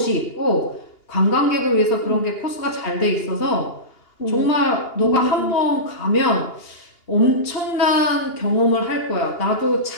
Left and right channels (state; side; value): late; right; 2.8 ms